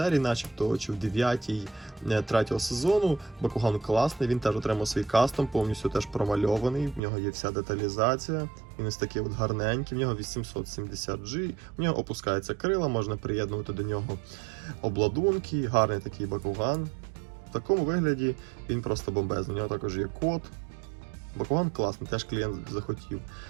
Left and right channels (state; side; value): drops out; left; at 7.0 s